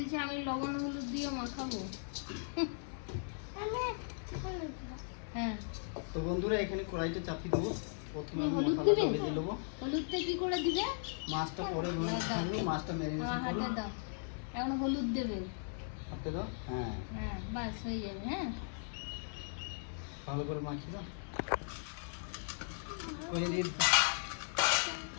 আমি লবণ হলুদ দিয়ে মাখাবো। হ্যাঁ, তো বন্ধুরা এখানে কড়াইটা চাপিয়ে দেবো। প্রথমে আমি হলুদ মশলাটা দিবে? ভেজে নেবো। হলুদটা কি করে দিবে? মাছটা পরে ভেজে মাছটা আমার ম্যারিনেশন হাতে করবো। দাও, এখন হলুদ দেবে। হাতে দাও। হ্যাঁ, হ্যাঁ বাস হয়ে যাবে। হ্যাঁ, ভালো করে মাখিয়ে দাও। করে দিয়ে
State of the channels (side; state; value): right; silent; 53 dB below the other